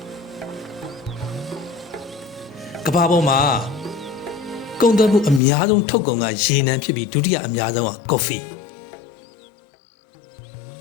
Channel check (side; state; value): right; drops out; at 5.4 s